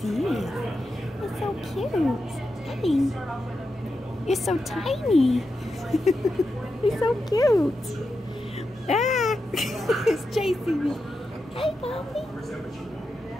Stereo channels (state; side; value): normal; both; correlation 0.88